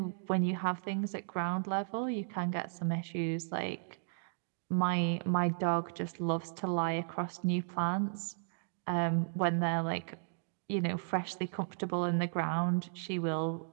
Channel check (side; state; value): left; silent; digital silence